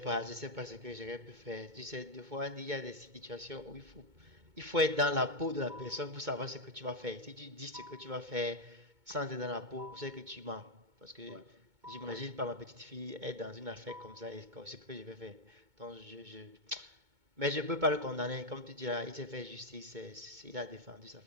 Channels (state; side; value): late; left; 2.2 ms